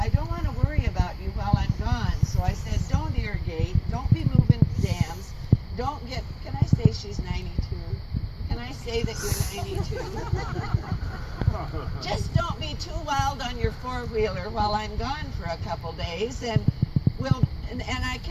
I don't want to worry about you while I'm gone. So I said, don't irrigate, don't be moving dams, don't get, can I say she's 92? Can I say that you're 92? Just don't be too wild on your four-wheeler while I'm gone for a couple days, and I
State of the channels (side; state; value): both; identical; correlation 1.00